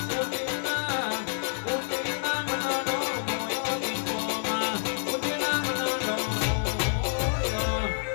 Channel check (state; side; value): silent; right; digital silence